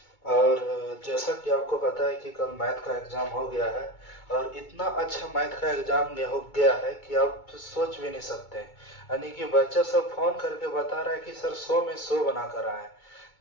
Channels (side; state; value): right; late; 2.2 ms